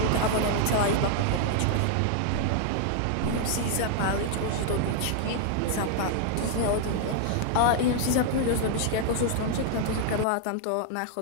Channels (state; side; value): different; both; correlation 0.00